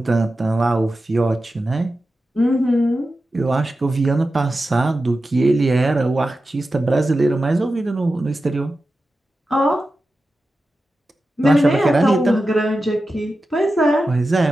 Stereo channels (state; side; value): normal; both; correlation 0.92